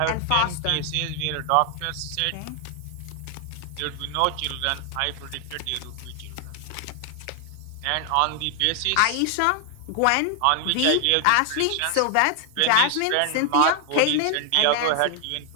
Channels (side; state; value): both; different; correlation 0.00